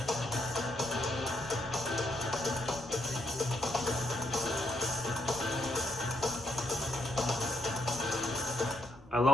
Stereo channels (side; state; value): both; normal; correlation 0.76